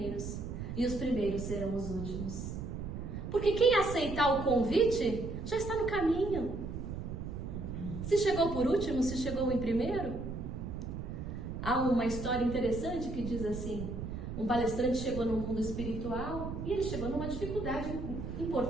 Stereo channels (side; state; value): right; noise; rumble, 6 dB below the sound